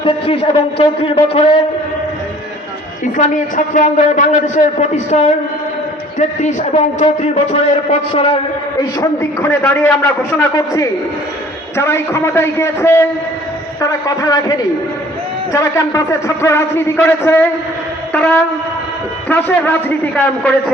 33 এবং 34 বছরের ইসলামী ছাত্র আন্দোলন বাংলাদেশের প্রতিষ্ঠার 33 এবং 34 বছরের পথ চলার এই সন্ধিক্ষণে দাঁড়িয়ে আমরা ঘোষণা করছি, যারা এই ক্ষমতায় গিয়েছে তারা কথা রাখেনি। যারা ক্যাম্পাসে ছাত্র রাজনীতি করেছে তারা ত্রাসের রাজনীতি কায়েম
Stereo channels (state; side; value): normal; both; correlation 0.52